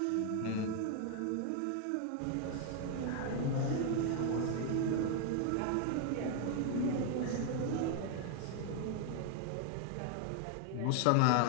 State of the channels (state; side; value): different; both; correlation 0.00